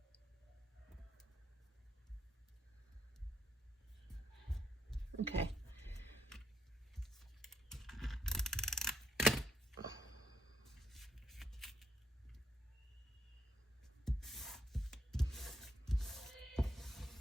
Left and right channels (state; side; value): normal; both; correlation 0.77